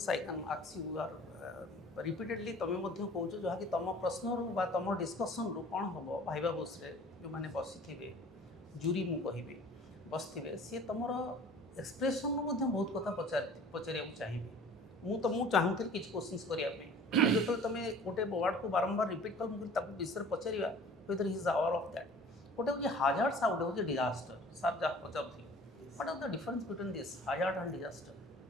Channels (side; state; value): both; normal; correlation 0.47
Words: I can ask you are repeatedly ତମେ ମଧ୍ୟ କହୁଛ ଯାହାକି ତମ ପ୍ରଶ୍ନରୁ ବା ତମ ଡିସ୍କସନ୍ରୁ କ'ଣ ହେବ ଭାଇବା ବସ୍ରେ ଯେଉଁମାନେ ବସିଥିବେ ଜୁରି ମୁଁ କହିବି ବସିଥିବେ ସିଏ ତମର ଏକ୍ସପ୍ରେସନ୍ରୁ ମଧ୍ୟ ବହୁତ କଥା ପଚାରିବାକୁ ଚାହିଁବେ। ମୁଁ ଚାହୁଁଥିଲି କିଛି କ୍ୱେଶ୍ଚିନ୍ସ କରିବା ପାଇଁ ଯେତେବେଳେ ତମେ ଗୋଟେ ୱାର୍ଡ଼କୁ ବାରମ୍ବାର ରିପିଟ୍ କଲ ମୁଁ ତାକୁ ବିଷୟରେ ପଚାରିବା whether he is aware of that. ଗୋଟେ ହେଉଛି ହାଜାର୍ଡସ୍ ଆଉ ଗୋଟେ ହେଉଛି ଡିଜାଷ୍ଟର। ସାର୍ ଯାହା ପଚାରୁଥିଲେ what are the difference between this hazard and disaster